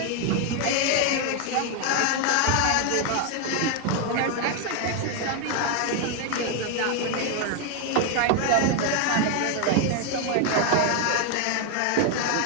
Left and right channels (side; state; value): both; different; correlation 0.01